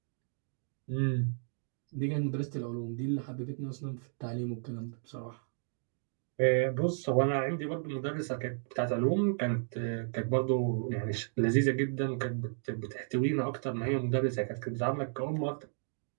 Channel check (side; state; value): left; silent; digital silence